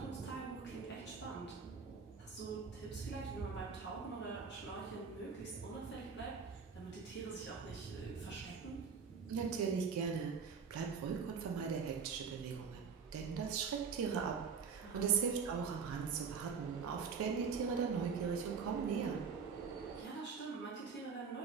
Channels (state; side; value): quieter; left; 5.8 dB